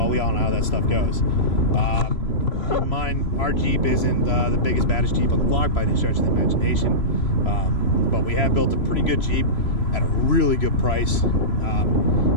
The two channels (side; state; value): right; late; 3.0 ms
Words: we all know how that stuff goes. Keep in mind, our Jeep isn't the biggest, baddest Jeep on the block by any stretch of the imagination, but we have built a pretty good Jeep at a really good price.